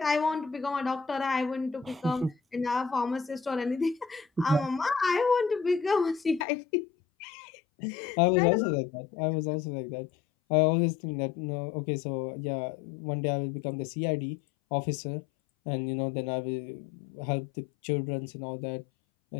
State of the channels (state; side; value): drops out; right; at 6.5 s